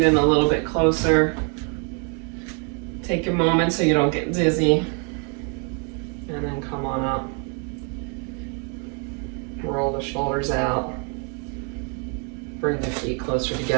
in a little bit closer. Take a moment so you don't get dizzy. And then come on up. Roll the shoulders out. Bring the feet closer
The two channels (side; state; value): left; quieter; 38.1 dB